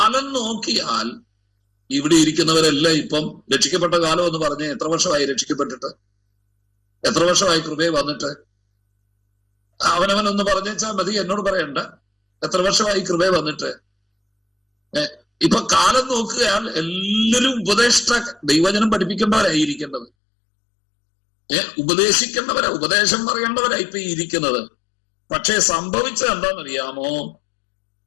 നോക്കിയാൽ ഇവിടെ ഇരിക്കുന്നവരെല്ലാം ഇപ്പം രക്ഷിക്കപ്പെട്ട കാലം എന്ന് പറഞ്ഞ് എത്ര വർഷമായി രക്ഷിക്കപ്പെട്ടിട്ട്? എത്ര വർഷമായി കൃപയെ വന്നിട്ട്? അവനവനൊന്ന് പറഞ്ഞേച്ചാൽ മതി, എന്നോട് പറയണ്ട. എത്ര വർഷമായി കൃപയെ വന്നിട്ട്? ഇപ്പൊ കാലം നോക്കുകയാൽ എല്ലാവരും ദൈവജനം പഠിപ്പിക്കേണ്ടവരായിരിക്കേണ്ടത്, ഉപദേശിക്കേണ്ടവരാ, ഉപദേശം പറയേണ്ടവരാ ഇപ്പൊ ഇരിക്കുന്നത്. പക്ഷെ സംഭവിച്ചത് എന്താണെന്നറിയാമോ?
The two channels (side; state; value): right; drops out; at 20.1 s